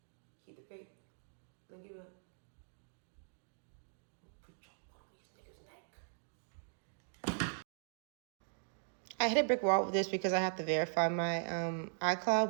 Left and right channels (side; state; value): left; silent; digital silence